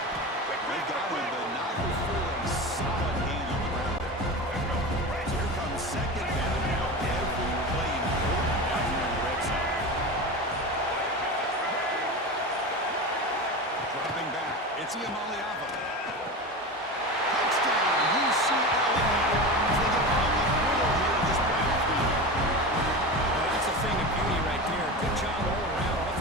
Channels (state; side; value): normal; both; correlation 0.26